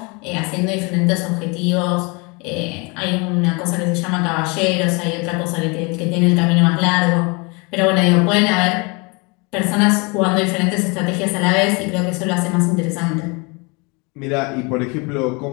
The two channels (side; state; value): right; quieter; 29.6 dB